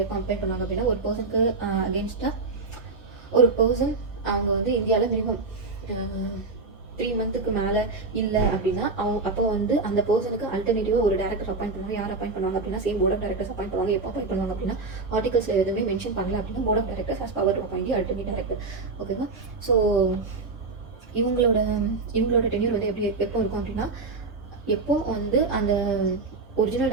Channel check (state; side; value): quieter; left; 3.9 dB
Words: எப்போ அப்பாயிண்ட் பண்ணுவாங்க அப்படின்னா ஒரு பர்சனுக்கு அகேன்ஸ்டாக ஒரு பர்சன் அவங்க வந்து இந்தியாவில் மினிமம் 3 மந்த்துக்கு மேலே இல்லை அப்படின்னா அப்போ வந்து அந்த பர்சனுக்கு அல்டர்னேட்டிவாக ஒரு டேரக்டர் அப்பாயிண்ட் பண்ணுவாங்க. யார் அப்பாயிண்ட் பண்ணுவாங்க அப்படின்னா same board of directors appoint பண்ணுவாங்க. எப்போ அப்பாயிண்ட் பண்ணுவாங்க அப்படின்னா ஆர்டிகல்ஸில் எதுவுமே மென்ஷன் பண்ணல அப்படின்னா board of directors has power to appoint alternate director. ஓகேவா? ஸோ இவங்களோட டென்யூர் வந்து எப்போ இருக்கும் அப்படின்னா எப்போ வந்து அந்த ஒரிஜினல்